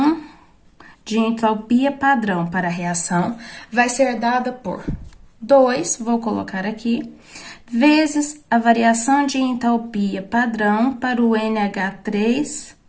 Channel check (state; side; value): identical; both; correlation 1.00